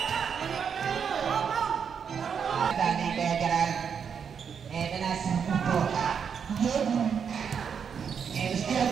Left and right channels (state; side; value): quieter; left; 7.0 dB